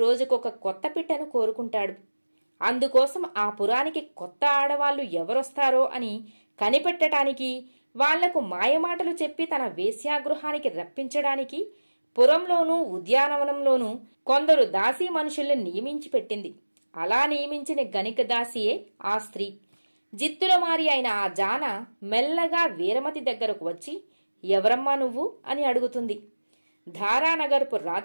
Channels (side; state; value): both; inverted; correlation -1.00